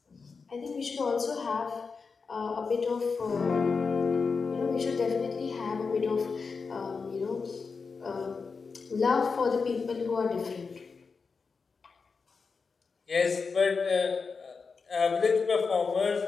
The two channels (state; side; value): quieter; right; 4.9 dB